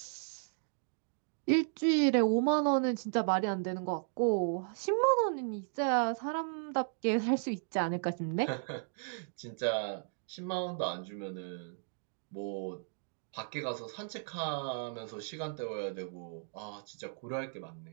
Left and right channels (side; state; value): left; silent; digital silence